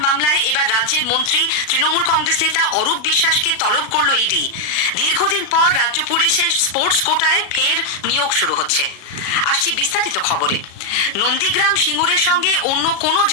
মামলায় এবার রাজ্যের মন্ত্রী তৃণমূল কংগ্রেস নেতা অরূপ বিশ্বাসকে তলব করল ইডি। দীর্ঘদিন পর রাজ্য পুলিশের স্পোর্টস কোটায় ফের নিয়োগ শুরু হচ্ছে। আসছি বিস্তারিত খবরে। নন্দীগ্রাম সিঙ্গুরের সঙ্গে অন্য কোনো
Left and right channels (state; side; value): late; right; 36 ms